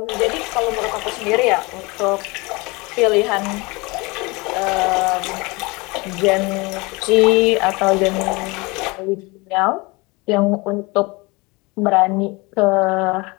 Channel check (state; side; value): quieter; right; 25.5 dB